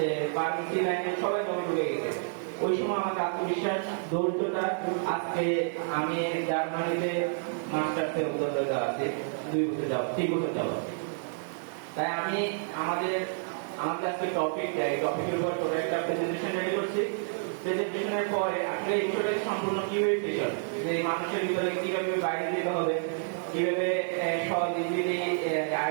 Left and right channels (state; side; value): silent; left; 58 dB below the other